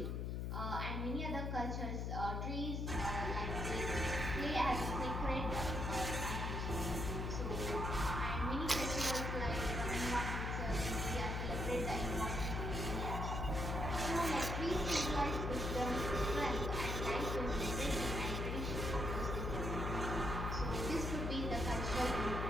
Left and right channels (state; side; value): noise; left; hum, 1 dB below the sound